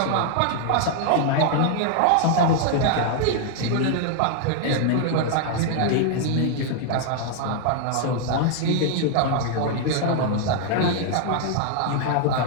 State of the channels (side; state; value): both; different; correlation 0.00